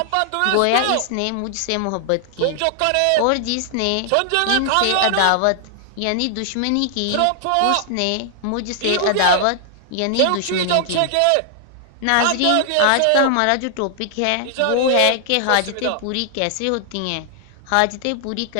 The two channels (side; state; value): both; different; correlation 0.00